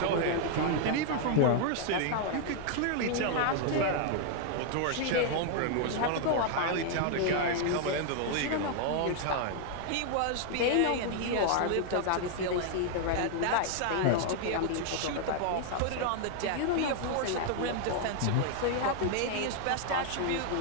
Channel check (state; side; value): different; both; correlation 0.00